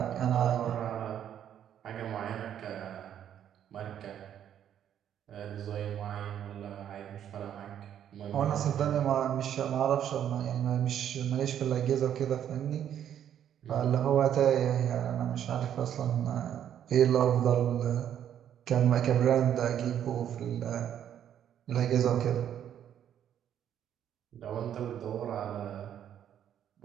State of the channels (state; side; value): quieter; left; 9.9 dB